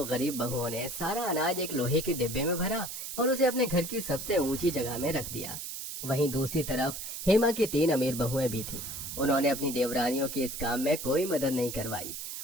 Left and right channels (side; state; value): right; noise; hiss, 7 dB below the sound